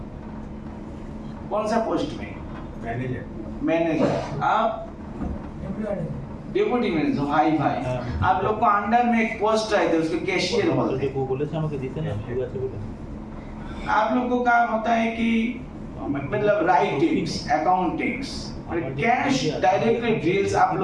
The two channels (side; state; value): both; identical; correlation 1.00